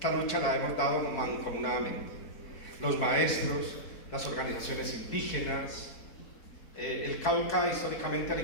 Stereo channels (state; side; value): late; right; 4.6 ms